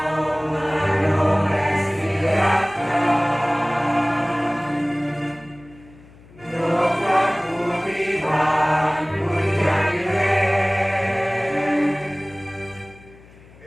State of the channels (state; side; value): noise; left; hum, 24 dB below the sound